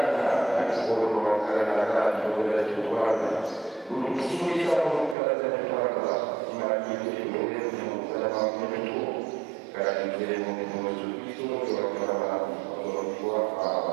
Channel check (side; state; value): left; drops out; at 5.2 s